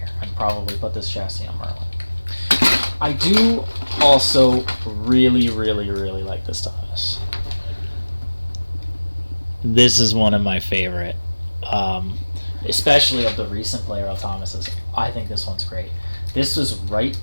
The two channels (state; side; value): inverted; both; correlation -1.00